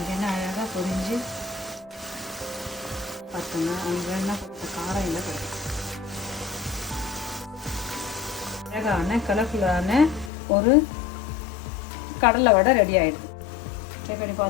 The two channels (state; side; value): drops out; right; at 10.3 s